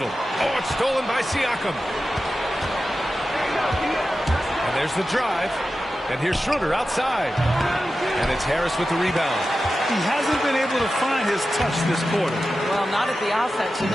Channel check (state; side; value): normal; both; correlation 0.93